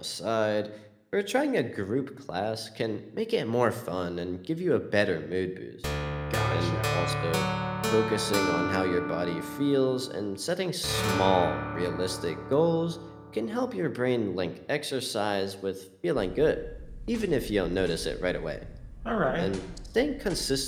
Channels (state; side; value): identical; both; correlation 1.00